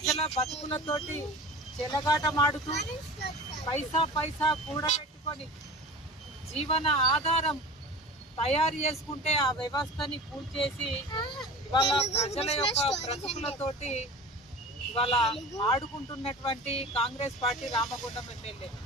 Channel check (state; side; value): normal; both; correlation 0.37